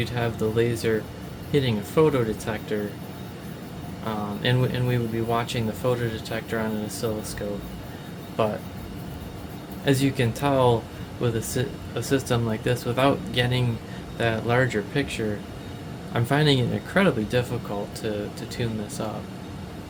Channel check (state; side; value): identical; both; correlation 1.00